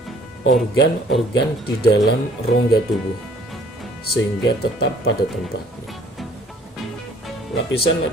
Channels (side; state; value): both; normal; correlation 0.56